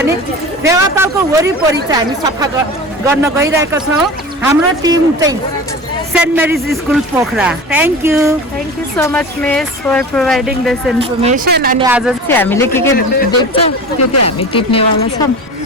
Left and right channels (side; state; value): both; normal; correlation 0.34